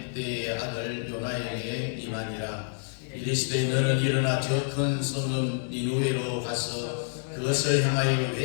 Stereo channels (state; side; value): silent; right; digital silence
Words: 아들 요나에게 임하니라. 이르시되 너는 일어나 저 큰 성읍 니누웨로 가서 그것을 향하여